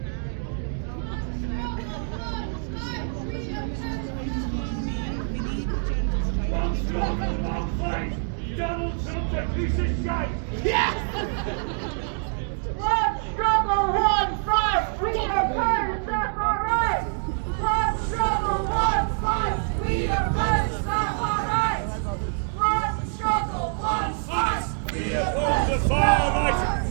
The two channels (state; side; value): silent; left; 58 dB below the other